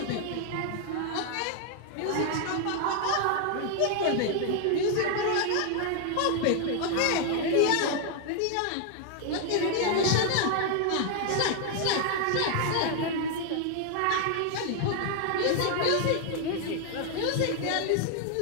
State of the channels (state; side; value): different; both; correlation 0.00